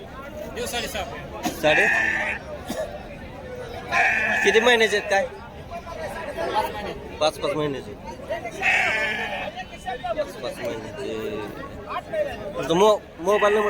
7.5. किती महिन्याचे आहेत काय? 5 महिन्याचे. 5 महिन्याचे. मोबाईल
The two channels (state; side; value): identical; both; correlation 1.00